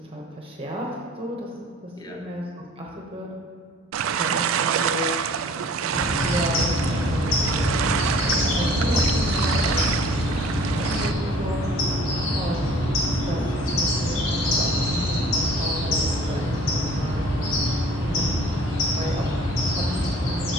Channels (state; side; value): normal; both; correlation 0.50